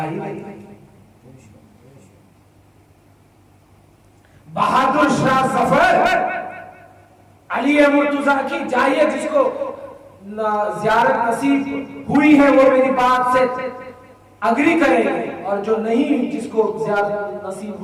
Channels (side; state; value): both; identical; correlation 1.00